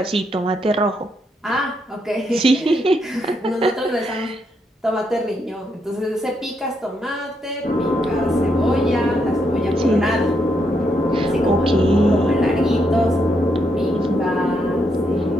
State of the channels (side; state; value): both; normal; correlation 0.78